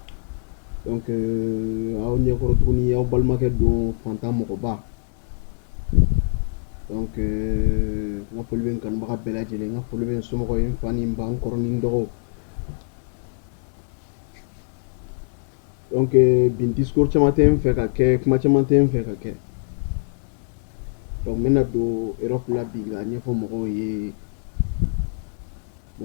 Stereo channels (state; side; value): silent; right; digital silence